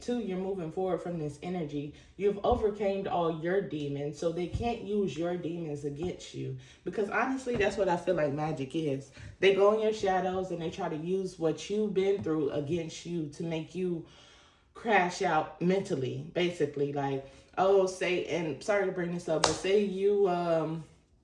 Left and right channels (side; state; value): both; identical; correlation 1.00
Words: Two, you're moving forward from this energy. You've overcame all your demons, so they can't use your demons against you. Because honestly, that's what I feel like magic is. They go in your shadows and they try to use what you've been through against you to make you crash out mentally, basically. Like, oh, say, and sorry to bring this up, but say you